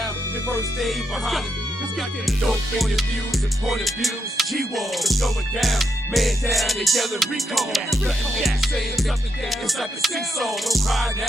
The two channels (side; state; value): both; normal; correlation 0.82